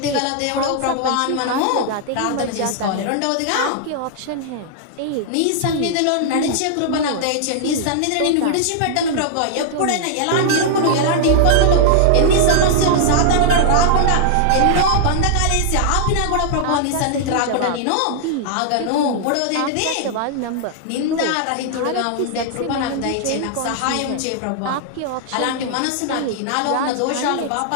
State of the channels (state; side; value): different; both; correlation -0.01